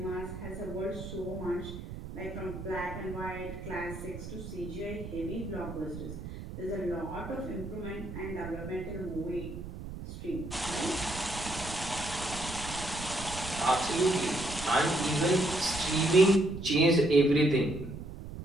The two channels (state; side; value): noise; right; rumble, 10 dB below the sound